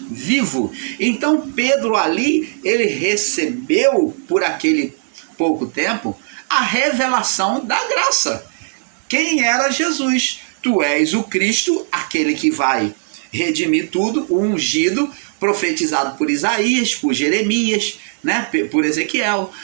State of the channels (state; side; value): silent; left; digital silence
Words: vivo. Então Pedro ali, ele recebeu por aquele pouco tempo a revelação da graça. Quem era Jesus? Tu és o Cristo, aquele que vai redimir tudo, o ungido, profetizado por Isaías, por Jeremias, né, por Ezequiel.